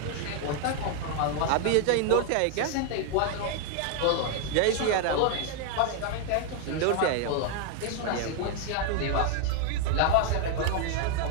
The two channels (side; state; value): both; different; correlation 0.00